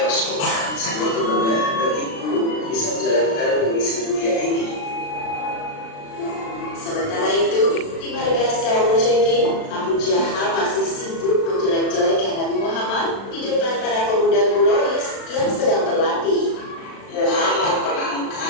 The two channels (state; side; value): late; right; 36 ms